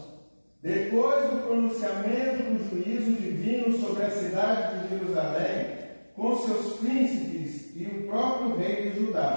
Depois do pronunciamento do juízo divino sobre a cidade de Jerusalém, com seus príncipes e o próprio rei de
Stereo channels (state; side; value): inverted; both; correlation -1.00